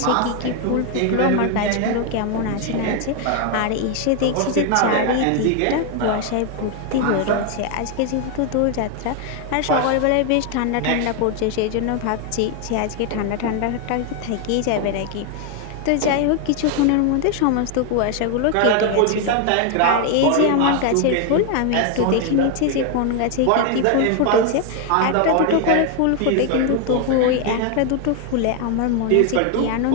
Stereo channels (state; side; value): different; both; correlation 0.01